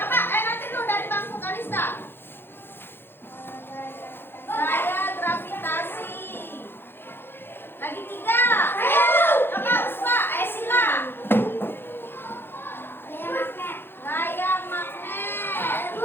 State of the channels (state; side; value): late; right; 0.10 ms